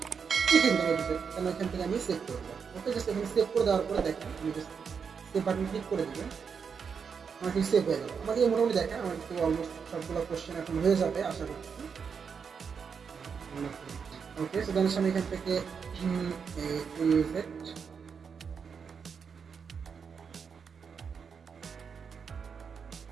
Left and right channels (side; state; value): left; quieter; 6.2 dB